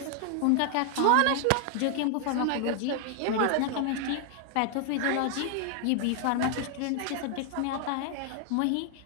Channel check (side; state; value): both; different; correlation 0.00